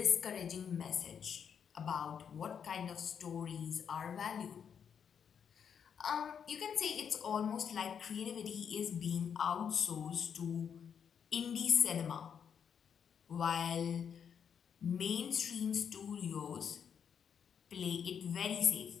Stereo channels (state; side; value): quieter; right; 7.6 dB